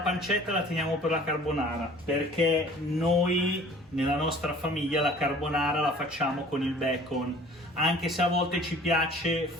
pancetta la teniamo per la carbonara, perché noi nella nostra famiglia la carbonara la facciamo con il bacon, anche se a volte ci piace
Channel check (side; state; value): both; normal; correlation 0.49